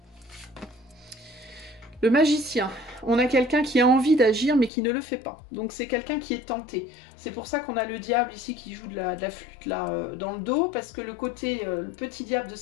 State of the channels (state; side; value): drops out; right; at 4.7 s